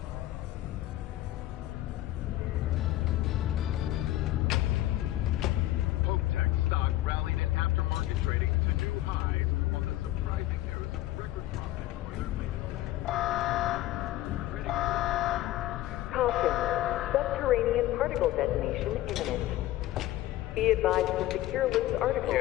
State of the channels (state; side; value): quieter; right; 15.1 dB